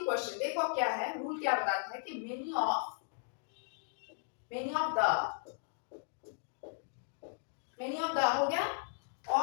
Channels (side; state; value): right; silent; digital silence